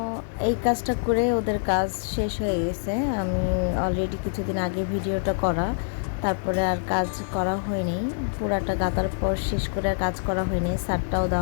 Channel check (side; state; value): right; silent; digital silence